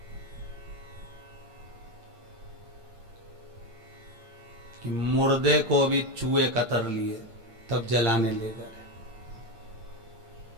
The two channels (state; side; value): late; left; 8.7 ms